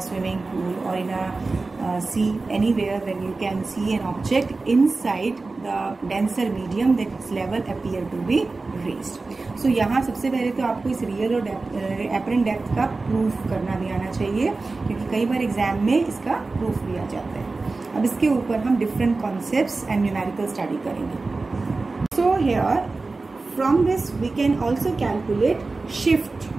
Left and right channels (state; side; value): quieter; left; 3.6 dB